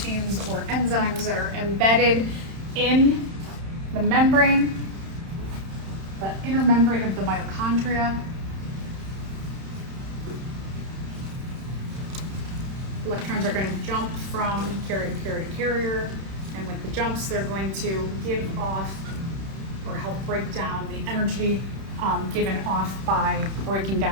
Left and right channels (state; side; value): late; left; 31 ms